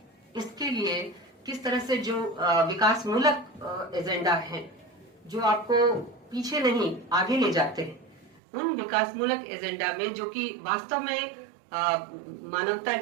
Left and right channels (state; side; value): drops out; left; at 8.4 s